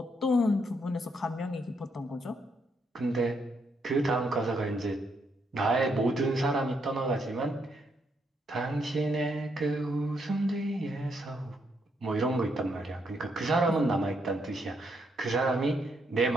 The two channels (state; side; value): normal; both; correlation 0.76